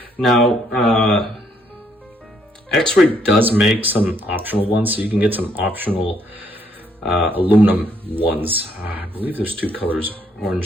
Now, Xray does make some optional ones, so you can get some optional aluminum ones. I believe there's 2 colors,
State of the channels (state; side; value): normal; both; correlation 0.70